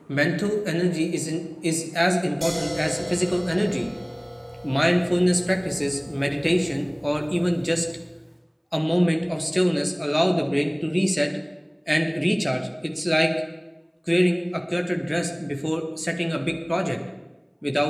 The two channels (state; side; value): identical; both; correlation 1.00